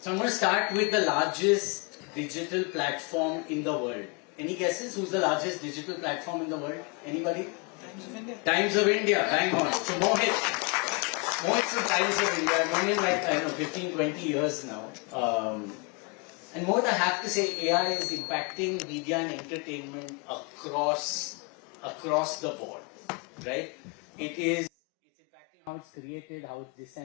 I'm going to start with the largest digital platform in the world. Any guesses? Who's the largest digital platform in the world? Anybody? Times of India. Times of India, bang on. So Mohit's from Times of India. I've known him like, I don't know, 15, 20 years now. And Mohit, I have to say, AI is impacting media and entertainment across the board, right? It's impacting how it's created, how it's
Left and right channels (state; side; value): quieter; right; 32.8 dB